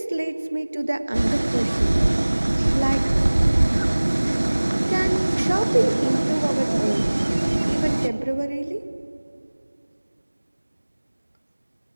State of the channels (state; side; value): inverted; both; correlation -1.00